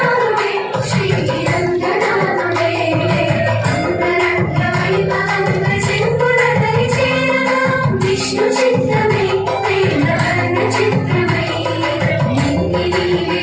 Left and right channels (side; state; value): both; identical; correlation 1.00